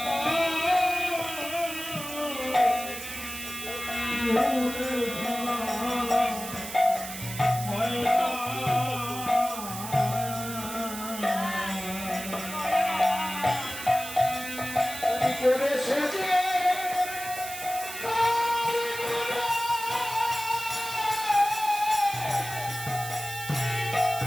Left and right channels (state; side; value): noise; right; hiss, 9 dB below the sound